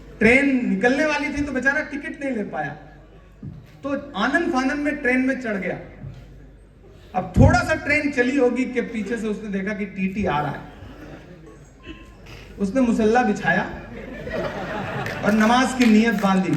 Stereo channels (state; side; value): identical; both; correlation 1.00